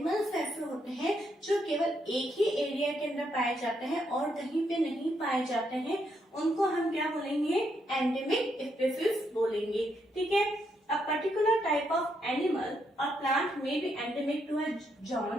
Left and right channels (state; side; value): normal; both; correlation 0.78